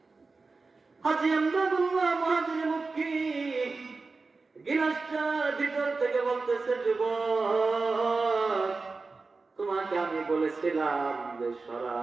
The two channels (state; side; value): quieter; left; 4.0 dB